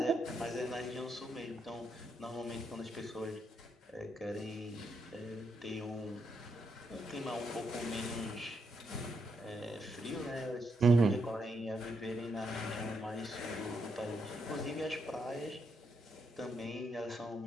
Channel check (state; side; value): normal; both; correlation 0.79